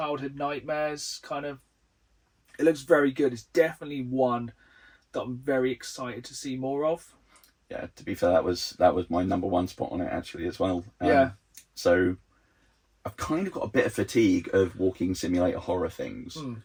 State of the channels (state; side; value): identical; both; correlation 1.00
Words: nightmares, kind of... It looks very good. It's definitely one that I'm very excited to see more of. Yeah, to be fair, that was my number one spot on it actually as well. Yeah. So I've kind of got a bit of fatigue of walking simulator horror things,